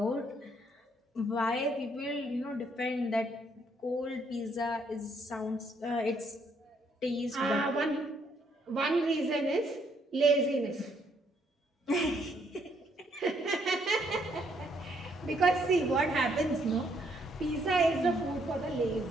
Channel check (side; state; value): both; normal; correlation 0.70